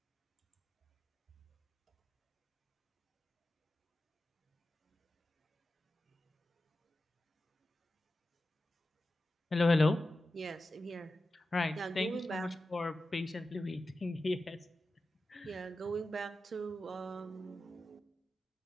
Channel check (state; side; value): normal; both; correlation 0.92